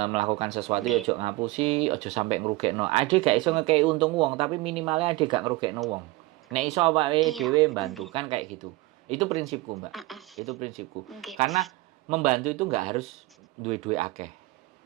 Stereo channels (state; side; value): quieter; left; 20.2 dB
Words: melakukan sesuatu ojo ngapusi, ojo sampai ngrugekno. Ade gak iso ngekei untung wong, tapi minimalnya ade gak ngrugekno wong. Nek iso awake dhewe bantu kan kayak gitu. Itu prinsipku, Mbak. Itu prinsipku. Karena membantu itu enggak harus duwe-duwe akeh.